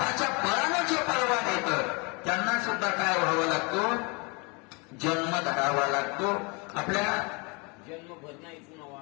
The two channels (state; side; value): quieter; right; 30.4 dB